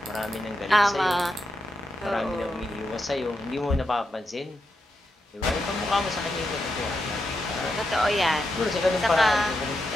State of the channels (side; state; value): both; normal; correlation 0.85